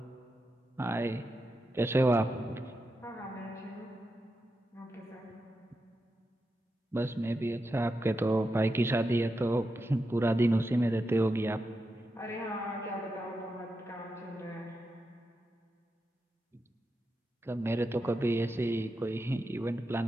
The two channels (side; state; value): both; normal; correlation 0.87